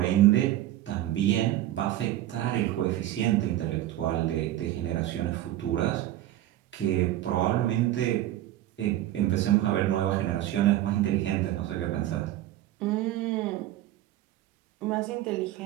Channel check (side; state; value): left; quieter; 13.8 dB